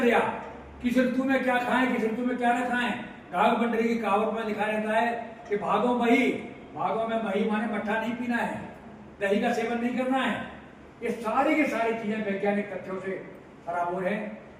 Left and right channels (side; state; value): both; identical; correlation 1.00